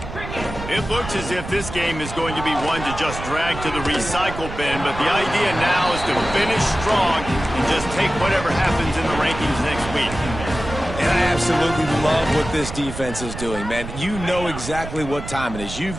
It looks as if this game is going to be one to just drag to the recycle bin, but the idea now is to finish strong and just take whatever happens in the rankings next week. And I absolutely love what this defense is doing, man. You know exactly what time it is. You've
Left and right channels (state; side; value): noise; right; rumble, 9 dB below the sound